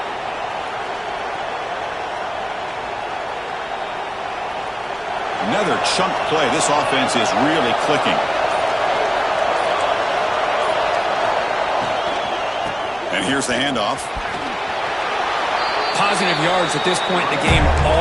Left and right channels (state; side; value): identical; both; correlation 1.00